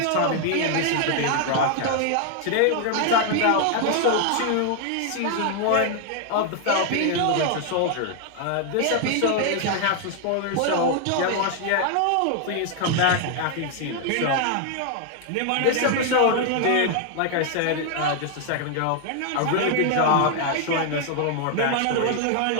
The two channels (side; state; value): both; different; correlation 0.00